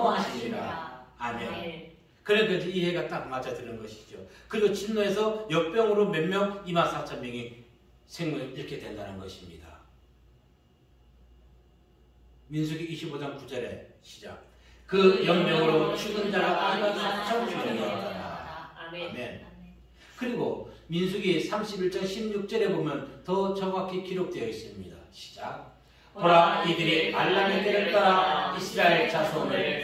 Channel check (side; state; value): both; identical; correlation 1.00